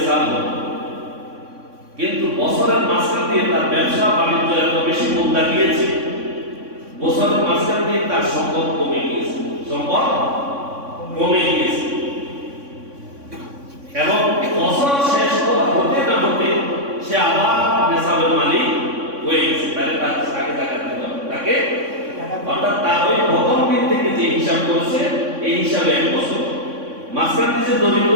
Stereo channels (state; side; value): late; left; 3.6 ms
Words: হল, কিন্তু বছরের মাঝখান দিয়ে তার ব্যবসা বাণিজ্য এত বেশি মন্দা গিয়েছে, বছরের মাঝখান দিয়ে তার সম্পদ কমে গিয়েছে, সম্পদ কমে গিয়েছে এবং বছর শেষ হতে না হতে সে আবার নেশাবের মালিক হয়ে গেছে। তাহলে তাকে যাকাত দিতে হবে। তাকে অর্থাৎ তার ওই প্রথম দিন থেকে যে হিসাব করেছে এই হিসাবে 1 বছর, মাঝখান দিয়ে যে দরিদ্র